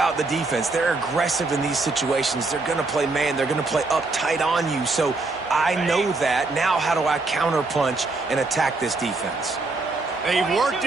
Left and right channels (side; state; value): left; quieter; 3.4 dB